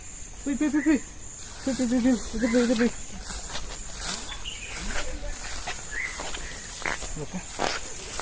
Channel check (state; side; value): identical; both; correlation 1.00